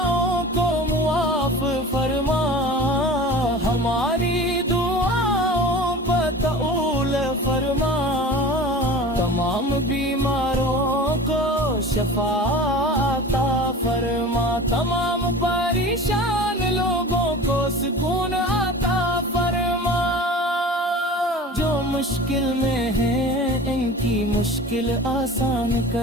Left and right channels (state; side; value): normal; both; correlation 0.38